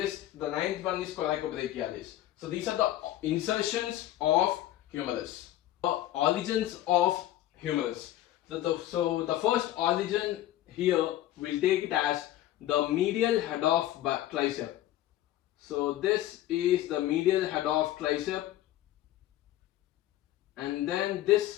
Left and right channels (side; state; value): right; quieter; 14.0 dB